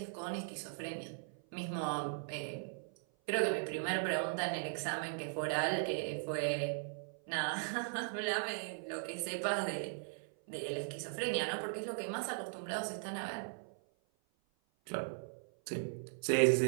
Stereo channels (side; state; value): left; silent; 52 dB below the other